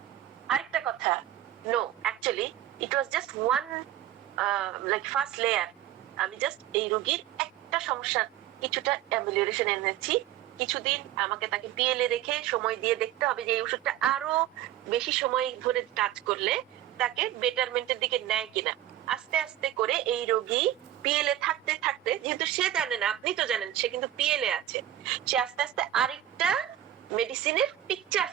আরেকটা কথা, no, actually it was just one like first layer. আমি জাস্ট এই রোগীর একটা সমস্যা কিছুটা অ্যামিলিয়েশন এনেছি, কিছুদিন আমাকে তাকে পিএলএ রেখে সময় দিয়ে দেখতে হবে যে এই ওষুধটা আরো বেশি সময় ধরে কাজ করলে তাকে বেটারমেন্টের দিকে নেয় কিনা। আস্তে আস্তে করে এই রোগী পিএলএ থাকতে থাকতে, যেহেতু সে জানে না, আপনি তো জানেন সে কিন্তু পিএলএ আছে, সে আস্তে আস্তে আরেকটা মেডিসিনের পিকচার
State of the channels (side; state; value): left; quieter; 12.4 dB